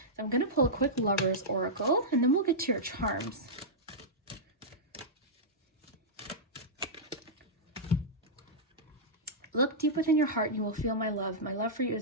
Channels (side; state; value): both; normal; correlation -0.11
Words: I'm going to pull a quick Lover's Oracle, and then we'll get to your charms. Look deep within your heart and you will feel my love. My love for you